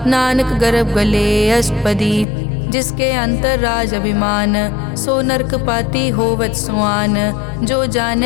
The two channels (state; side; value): drops out; right; at 2.2 s